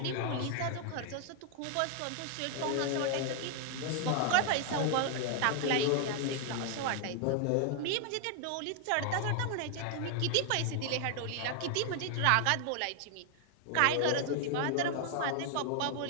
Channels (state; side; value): different; both; correlation 0.00